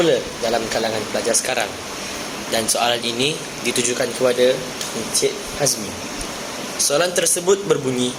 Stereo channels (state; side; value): identical; both; correlation 1.00